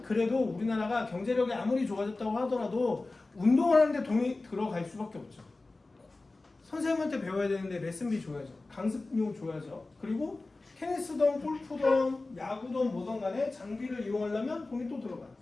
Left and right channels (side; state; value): right; quieter; 3.3 dB